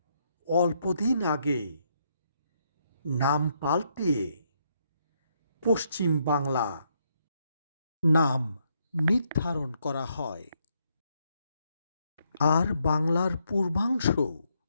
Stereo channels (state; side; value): inverted; both; correlation -0.75